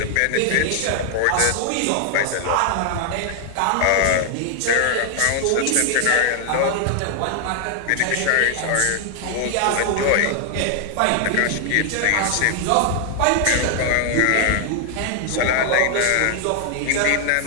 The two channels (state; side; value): different; both; correlation 0.00